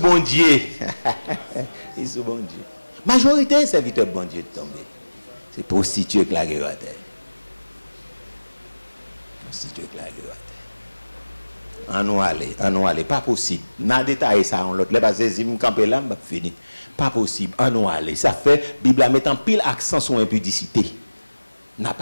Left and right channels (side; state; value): both; inverted; correlation -1.00